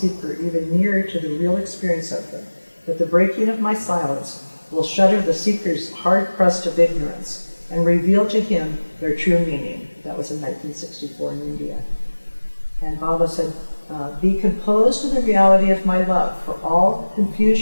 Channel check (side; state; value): both; inverted; correlation -1.00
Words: even nearer to the real experience of them, but the breaking of my silence will shatter the seeker's hard crust of ignorance and reveal to him their true meaning. That was in 1964 in India. And Baba said, be composed to the reality of my love, for all